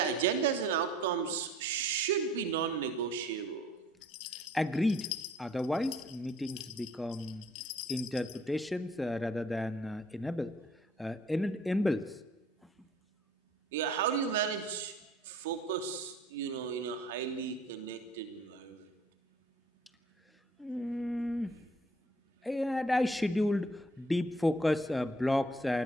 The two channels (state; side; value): normal; both; correlation 0.56